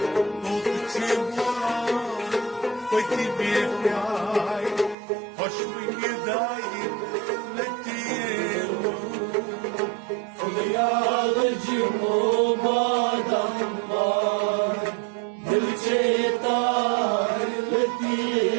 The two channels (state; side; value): drops out; left; at 5.0 s